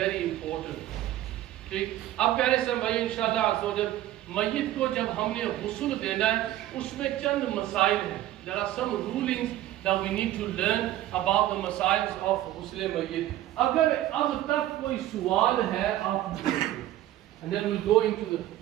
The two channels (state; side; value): quieter; left; 13.9 dB